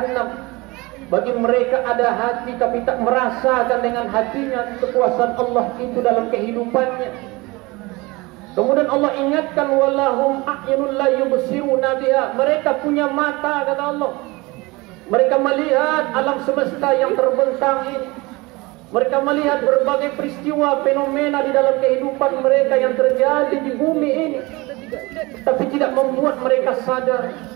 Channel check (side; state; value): left; quieter; 23.5 dB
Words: Bagi mereka ada hati tapi tak merasakan dengan hatinya kekuasaan Allah itu dalam kehidupannya. Kemudian Allah ingatkan, walahum a'yunun la yubsiruna biha. Mereka punya mata, kata Allah. Mereka melihat alam semesta yang terbentang ini. Mereka melihat berbagai peristiwa, fenomena di dalam kehidupan mereka yang terjadi di bumi ini. Tapi tidak membuat mereka sadar,